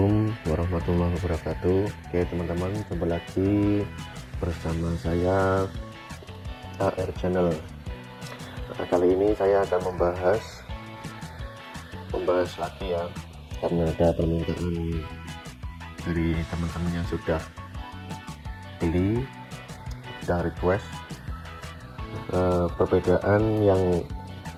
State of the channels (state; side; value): identical; both; correlation 1.00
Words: warahmatullahi wabarakatuh. Oke teman-teman, jumpa lagi bersama saya AR Channel. Nah, kali ini saya akan membahas lagi ya, karena ada permintaan dari teman-teman yang sudah beli, sudah request perbedaan yang